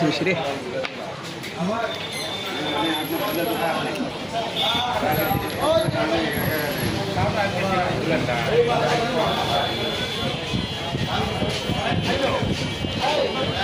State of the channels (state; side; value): identical; both; correlation 1.00